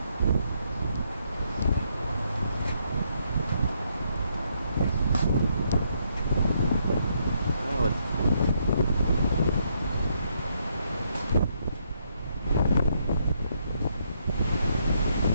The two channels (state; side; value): inverted; both; correlation -0.74